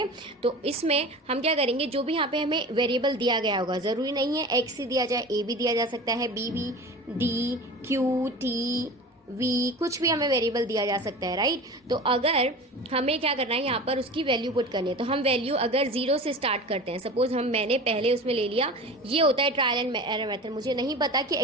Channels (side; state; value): both; normal; correlation 0.35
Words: तो इसमें हम क्या करेंगे, जो भी यहाँ पे हमें वेरिएबल दिया गया होगा, जरूरी नहीं है एक्स ही दिया जाए, ए भी दिया जा सकता है, बी भी, डी, क्यू, टी, वी, कुछ भी हमें वेरिएबल दिया जा सकता है, राइट। तो अगर हमें क्या करना है, यहाँ पर उसकी वैल्यू पुट करनी है, तो हम वैल्यू अगर 0 से स्टार्ट करते हैं, सपोज मैंने पहले उसमें ले लिया, ये होता है ट्रायल एंड एरर मेथड। मुझे नहीं पता कि